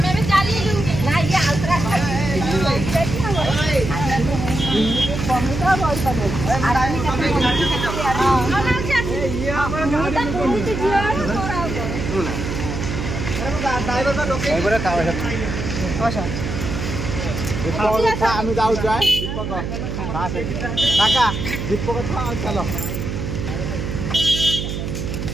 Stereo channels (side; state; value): right; noise; hum, 4 dB below the sound